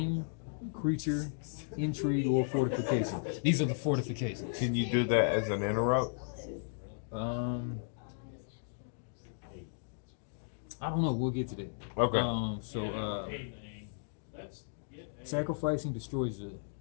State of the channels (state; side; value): silent; right; digital silence